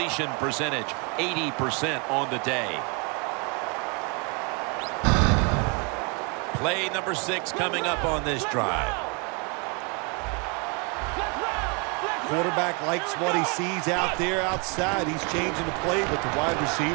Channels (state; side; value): quieter; left; 33.0 dB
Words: percentage, 80% on the day. Play number 6 coming up on this drive. Quarterback likes what he sees out there outside. He's changing the play with the wide